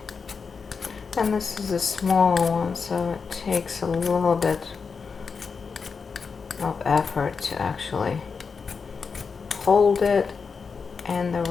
And this is a smaller one, so it takes a little bit of effort to actually hold it in the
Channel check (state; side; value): quieter; right; 5.3 dB